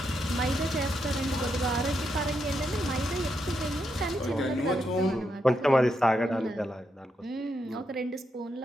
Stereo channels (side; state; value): both; normal; correlation 0.82